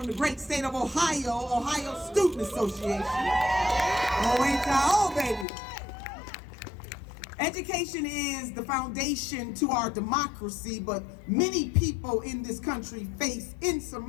the great state of Ohio Student Association. Oh, ain't y'all, baby. Education is the foundation to our democracy, but many people in this country face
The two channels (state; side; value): drops out; right; at 5.5 s